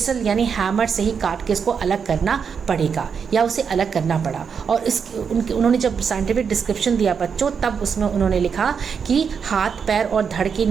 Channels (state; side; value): quieter; left; 6.5 dB